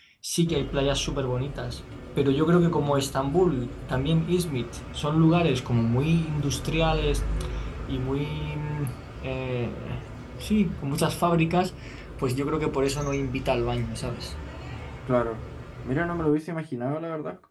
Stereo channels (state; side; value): identical; both; correlation 1.00